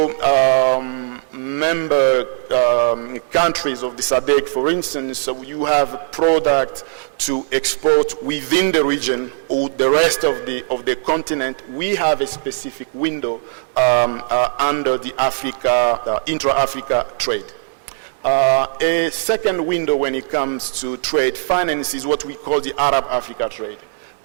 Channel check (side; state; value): left; silent; 67 dB below the other